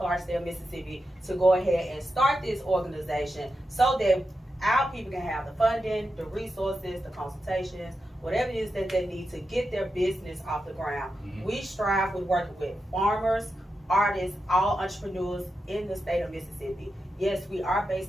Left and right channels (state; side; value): normal; both; correlation 0.89